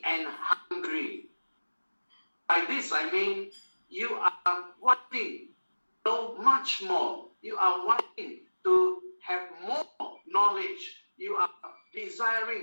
and hungry. By this I mean you are wanting to know much more. You are wanting to have more knowledge. You are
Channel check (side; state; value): both; inverted; correlation -1.00